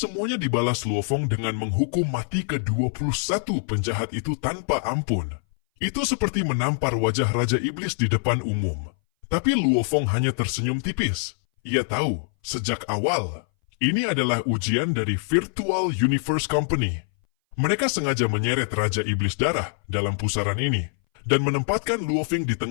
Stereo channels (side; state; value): right; silent; 60 dB below the other